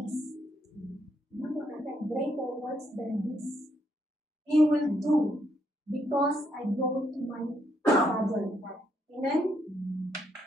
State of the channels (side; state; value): both; normal; correlation 0.75